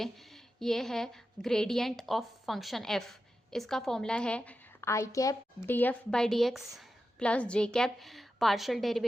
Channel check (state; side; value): normal; both; correlation 0.91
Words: ये है ग्रेडियंट ऑफ फंक्शन एफ। इसका फॉर्मूला है i cap d f by D x plus j cap partial